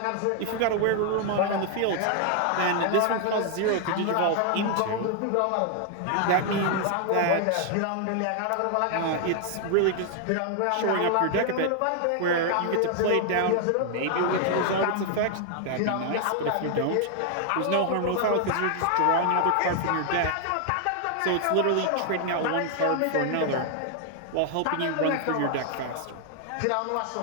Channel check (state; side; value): different; both; correlation 0.00